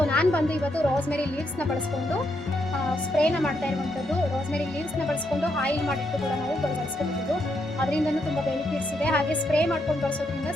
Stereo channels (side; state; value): both; normal; correlation 0.79